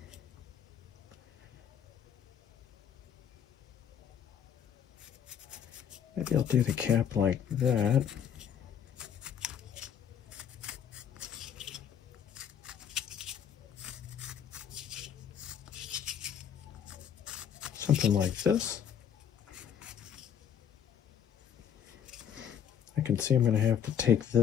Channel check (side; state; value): right; quieter; 8.6 dB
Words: Maybe I'll do the cap like that. Something like this. I can see I'm going to have to take